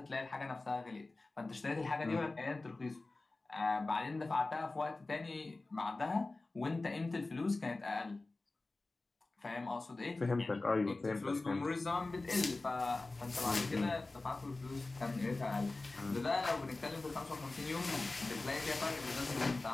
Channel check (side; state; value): right; quieter; 3.2 dB